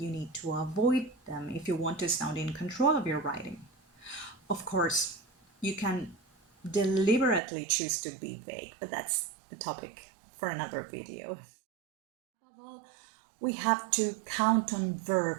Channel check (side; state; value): left; drops out; at 7.4 s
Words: need to avoid them if you want to sound in control of your writing. Of course, you can deliberately choose to be vague, but that's a topic for another video. Above all, we have to count on